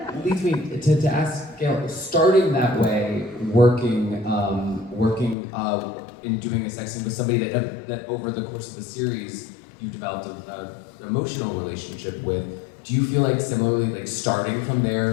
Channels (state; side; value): drops out; right; at 5.4 s